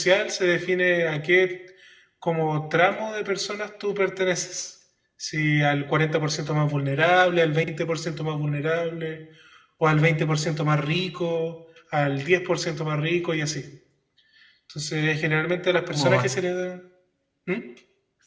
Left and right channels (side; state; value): both; identical; correlation 1.00